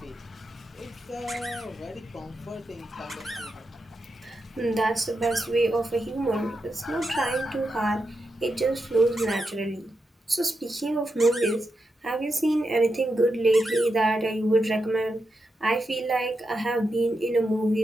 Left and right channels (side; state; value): both; normal; correlation 0.87